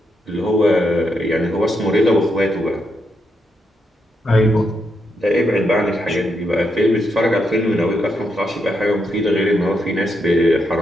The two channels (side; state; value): both; normal; correlation 0.81